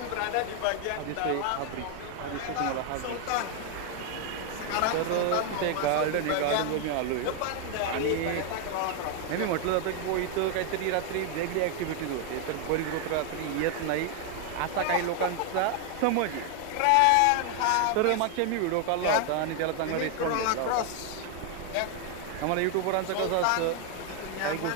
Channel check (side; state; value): both; different; correlation 0.00